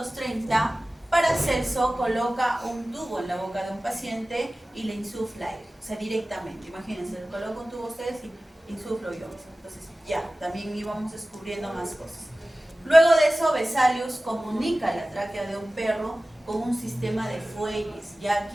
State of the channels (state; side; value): normal; both; correlation 0.97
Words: Paracelso coloca un tubo en la boca de un paciente y le insufla aire, o sea, directamente. Imagínense, le coloco un tubo a ustedes y insuflo yo. Entonces, ya, también íbamos descubriendo más cosas. Luego de eso, Vesalius comunica la tráquea de un perro con un sistema de fuelles, ya